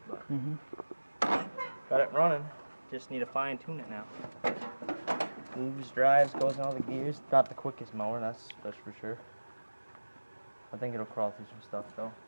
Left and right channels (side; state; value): both; inverted; correlation -1.00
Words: But got it running. Just need to fine tune it now. Moves, drives, goes in all the gears. Not the quickest mower, that's for sure. I think it'll crawl through some stuff though.